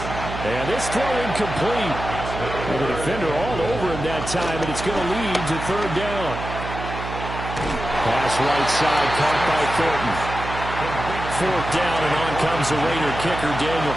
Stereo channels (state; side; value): noise; right; hum, 8 dB below the sound